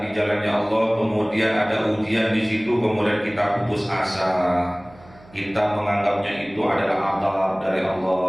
di jalannya Allah, kemudian ada ujian di situ, kemudian kita putus asa, kita menganggapnya itu adalah adab dari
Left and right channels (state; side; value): noise; right; hum, 24 dB below the sound